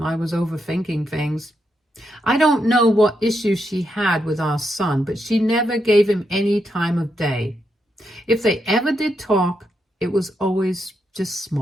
I was overthinking things. I don't know what issues she had with our son, but she never gave him any time of day. If they ever did talk, it was always just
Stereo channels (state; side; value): normal; both; correlation 0.82